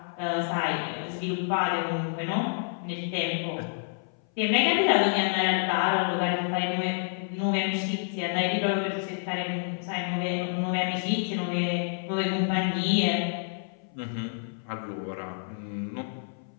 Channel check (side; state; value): right; silent; 58 dB below the other